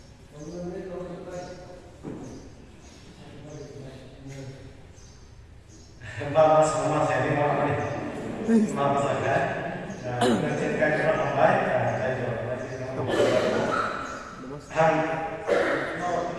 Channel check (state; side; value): identical; both; correlation 1.00